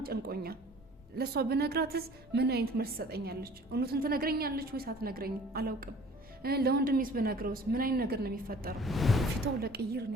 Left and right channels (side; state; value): both; normal; correlation 0.49